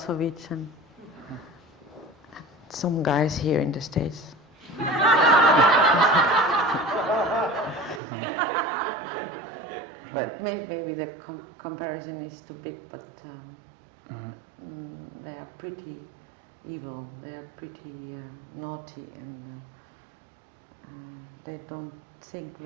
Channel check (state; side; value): drops out; left; at 8.0 s